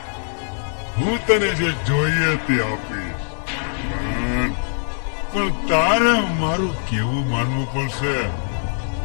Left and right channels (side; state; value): right; silent; 59 dB below the other